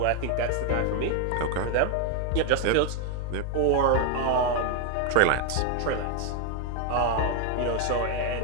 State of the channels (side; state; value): both; different; correlation 0.01